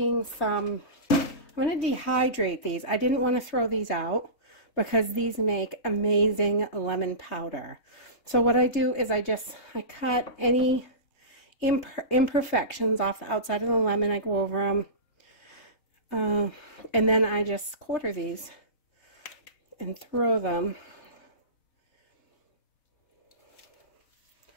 I'm going to dehydrate these. I didn't want to throw these out because these make amazing lemon powder. So what I do is I cut any imperfections off the outside of the lemon. I go over them. And then I just quarter these and throw them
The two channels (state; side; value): late; right; 3.3 ms